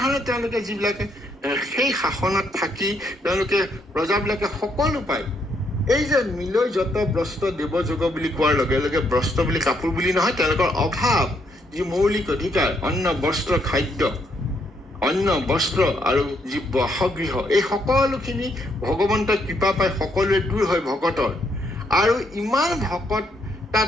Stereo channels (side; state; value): both; normal; correlation 0.74